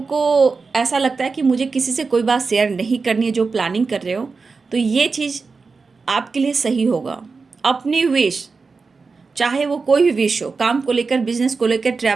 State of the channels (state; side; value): quieter; left; 4.5 dB